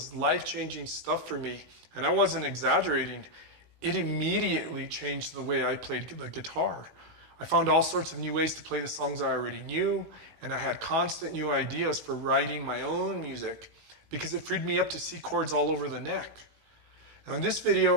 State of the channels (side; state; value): left; late; 18 ms